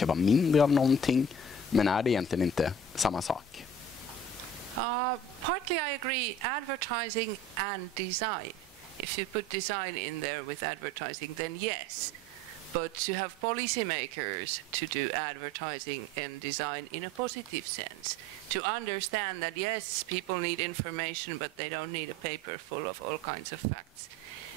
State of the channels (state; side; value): normal; both; correlation 0.43